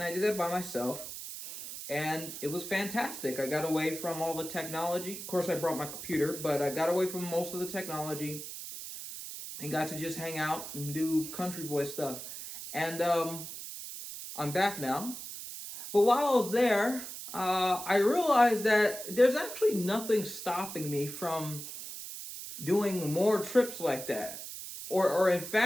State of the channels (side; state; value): right; noise; hiss, 9 dB below the sound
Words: I did that by myself. And it was fantastic. I got away from all the technology. Of course, I brought my computer, but I got away from most of the technology and got to just hang out and do country boy stuff. And I'm back now. But while I was there, I realized that there's actually nothing stopping me from doing more trips like that, or in